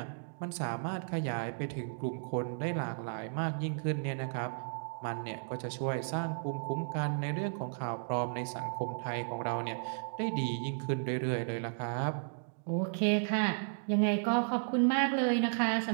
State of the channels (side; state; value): left; silent; digital silence